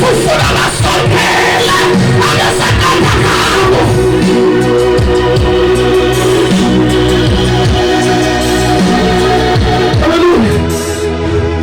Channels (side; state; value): both; identical; correlation 1.00